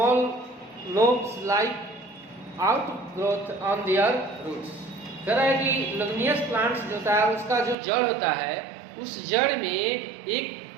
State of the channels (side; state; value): left; drops out; at 7.8 s